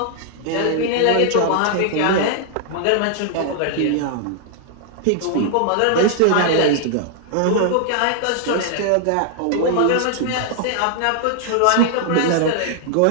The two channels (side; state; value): both; different; correlation 0.00